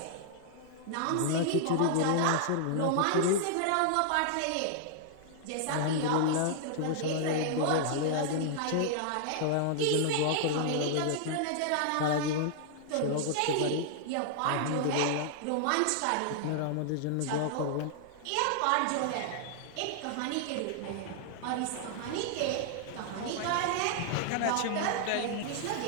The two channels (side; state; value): both; different; correlation -0.01